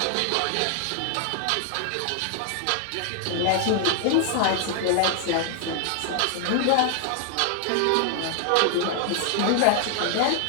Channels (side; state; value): both; different; correlation 0.00